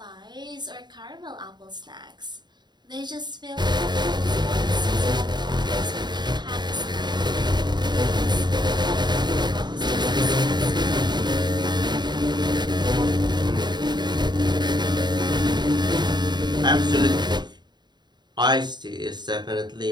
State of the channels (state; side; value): late; left; 0.21 ms